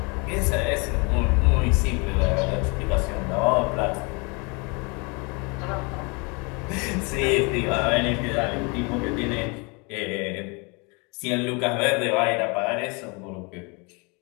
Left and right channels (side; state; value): right; quieter; 30.6 dB